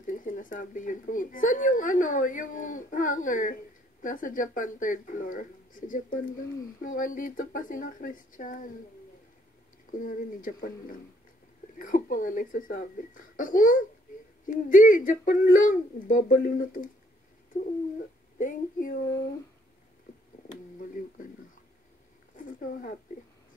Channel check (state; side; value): normal; both; correlation 0.66